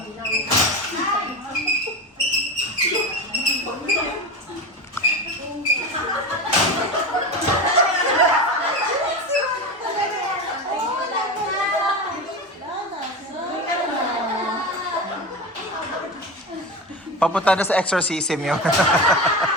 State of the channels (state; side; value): normal; both; correlation 0.24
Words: Papunta na sa exorcism yun.